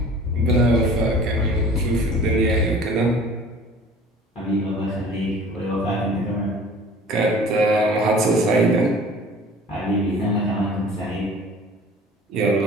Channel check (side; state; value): both; normal; correlation 0.46